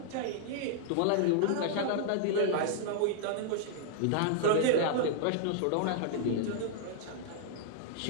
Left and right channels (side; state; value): both; different; correlation -0.01